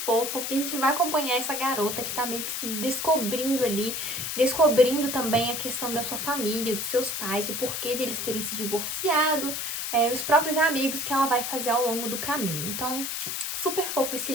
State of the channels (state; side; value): noise; left; hiss, 3 dB below the sound